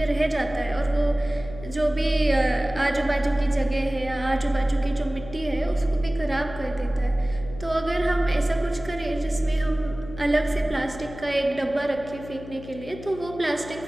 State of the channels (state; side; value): noise; left; hum, 14 dB below the sound